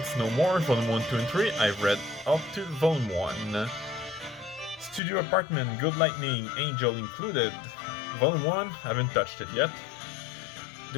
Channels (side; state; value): right; drops out; at 5.0 s